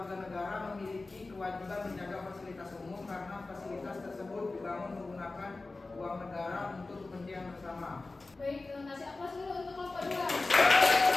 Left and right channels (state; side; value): quieter; right; 3.4 dB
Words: negara memiliki kewajiban menjaga fasilitas umum karena fasilitas tersebut dibangun menggunakan uang negara untuk kepentingan bersama. Baik, kasih aplaus dulu untuk kelompok 2.